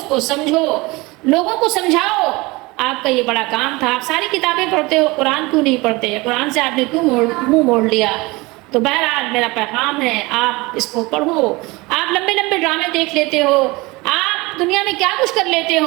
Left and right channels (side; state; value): left; quieter; 23.2 dB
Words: کو سمجھو، لوگوں کو سمجھاؤ۔ آپ کا یہ بڑا کام تھا۔ آپ ساری کتابیں پڑھتے ہو، قرآن کیوں نہیں پڑھتے؟ قرآن سے آپ نے کیوں منہ موڑ لیا؟ تو بہرحال میرا پیغام ہے، آپ اس کو پڑھو۔ آپ لمبے لمبے ڈرامے دیکھ لیتے ہو، آپ دنیا میں کیا کچھ کر لیتے